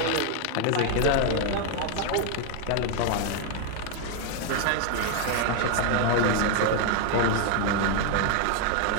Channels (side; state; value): both; different; correlation 0.00